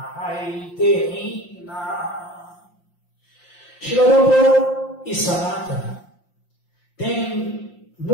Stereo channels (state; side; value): late; right; 5.7 ms